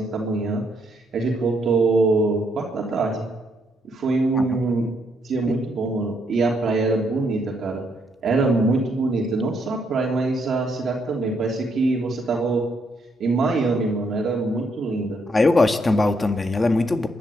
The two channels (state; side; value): normal; both; correlation 0.75